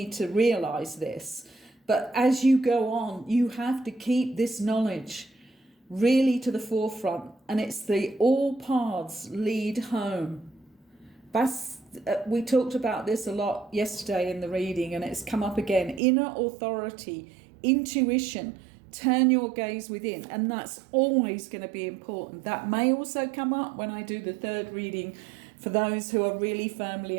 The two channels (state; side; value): drops out; left; at 16.0 s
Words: to realize this, but as you go on, you have to keep this knowledge really to the forefront. And it's the all paths lead home. That's we talked about this a lot yesterday in the reading, and it's come up again. Inner authority, intuition, turn your gaze within, and that's always going to be important. That may also come up when I do the third reading for those who are really firmly